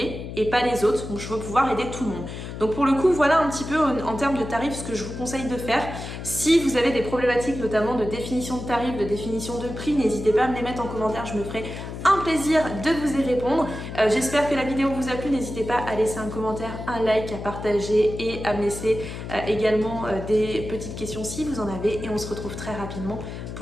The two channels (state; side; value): noise; left; hum, 8 dB below the sound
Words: et pas les autres. Donc je veux pouvoir aider tout le monde. Donc pour le coup, voilà un petit peu en termes de tarifs ce que je vous conseille de faire. Si vous avez des problématiques notamment de définition de tarifs, de définition de prix, n'hésitez pas à me les mettre en commentaire, je me ferai un plaisir de vous y répondre. J'espère que la vidéo vous a plu, n'hésitez pas à laisser un commentaire, un like, à partager et à me laisser également des petites questions si vous en avez et on se retrouve très rapidement